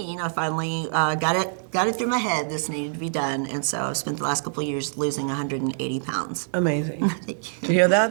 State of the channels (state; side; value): silent; left; digital silence